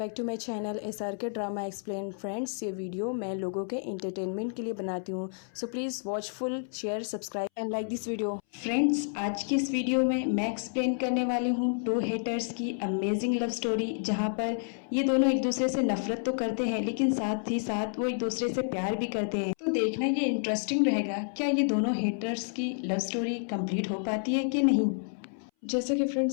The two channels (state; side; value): silent; right; 58 dB below the other